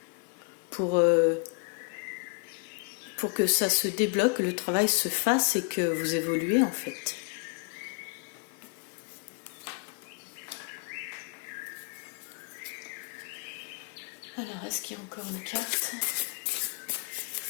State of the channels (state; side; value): quieter; right; 35.8 dB